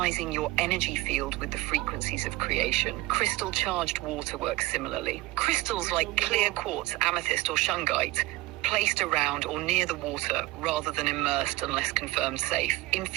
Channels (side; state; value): left; quieter; 19.0 dB